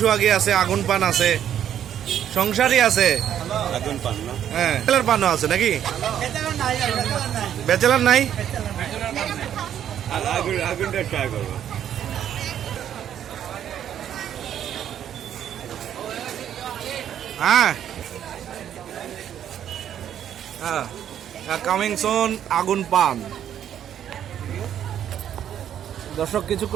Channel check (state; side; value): quieter; left; 10.0 dB